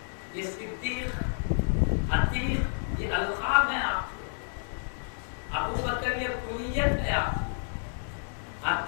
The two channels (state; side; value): silent; right; 57 dB below the other